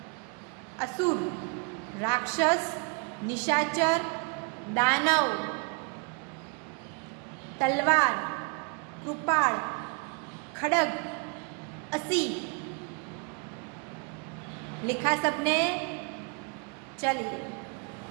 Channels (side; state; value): left; quieter; 34.3 dB